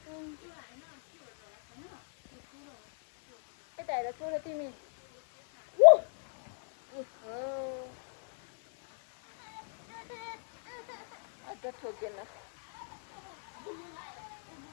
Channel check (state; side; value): silent; right; 56 dB below the other